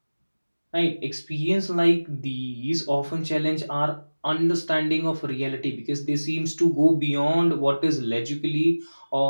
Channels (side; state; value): both; inverted; correlation -1.00